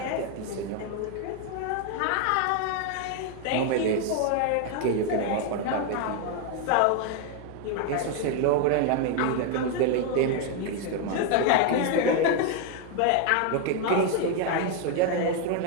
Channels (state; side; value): different; both; correlation 0.01